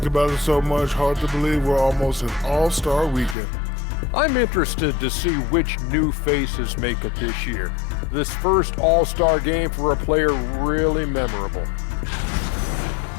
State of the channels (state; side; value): drops out; right; at 3.4 s